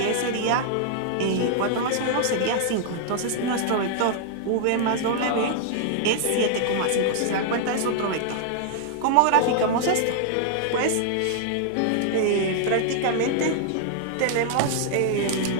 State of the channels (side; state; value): both; different; correlation -0.01